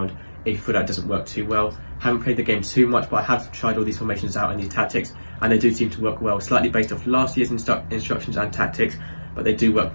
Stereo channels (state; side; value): inverted; both; correlation -1.00